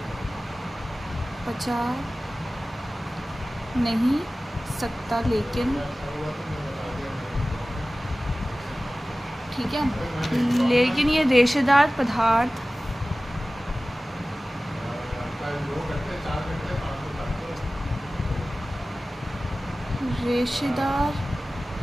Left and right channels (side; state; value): both; normal; correlation 0.97